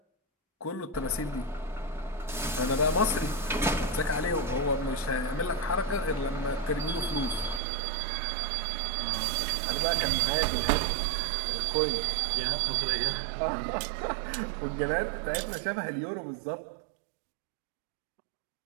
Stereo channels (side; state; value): left; drops out; at 7.6 s